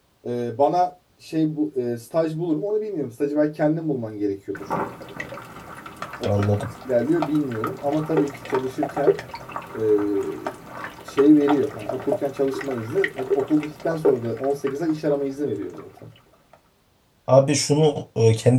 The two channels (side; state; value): both; identical; correlation 1.00